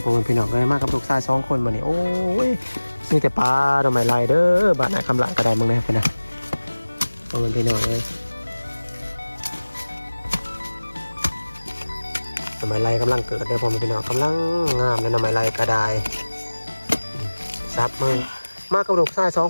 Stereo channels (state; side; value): inverted; both; correlation -1.00